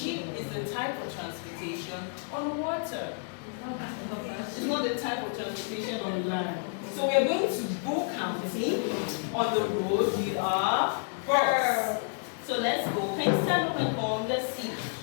is a type of transportation on water. It's not the type of transportation on land. So we are going to go counting on the road. We are bus. So let's go. Can you stand up and form? Let's see.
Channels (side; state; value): right; silent; 58 dB below the other